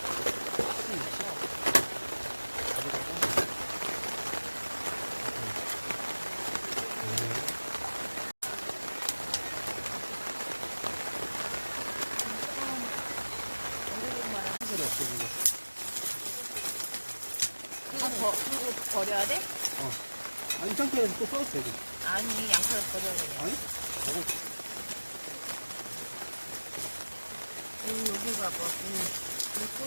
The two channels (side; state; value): both; inverted; correlation -1.00